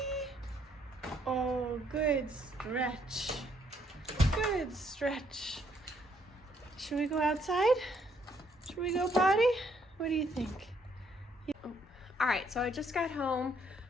Oh, good stretch. Good stretch. Should we go outside? Should we go potty? What do you think? Yeah. Oh. All right, so I just got home.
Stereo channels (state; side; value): normal; both; correlation 0.69